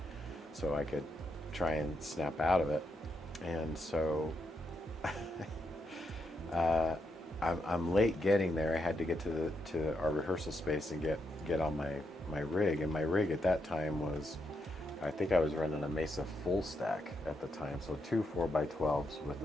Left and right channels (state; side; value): normal; both; correlation 0.82